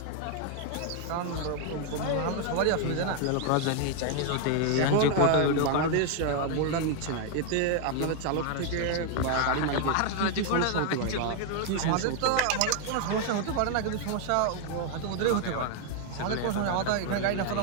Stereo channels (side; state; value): both; different; correlation 0.00